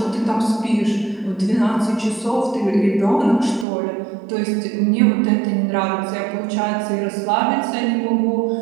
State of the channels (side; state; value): left; drops out; at 3.7 s